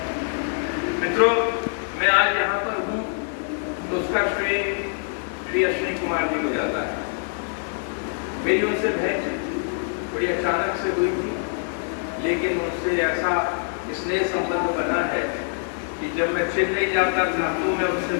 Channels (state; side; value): silent; right; 59 dB below the other